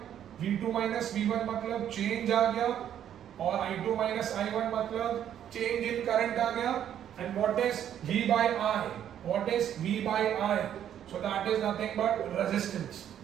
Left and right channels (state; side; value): quieter; left; 10.1 dB